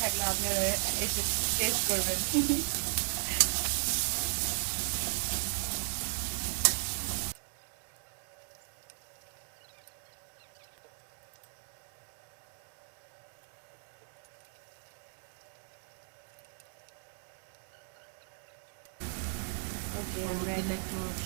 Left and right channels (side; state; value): left; silent; 54 dB below the other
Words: থাকলে আপনারা এসে টেস্ট করবেন। ওকে, আমরা দিলে একটু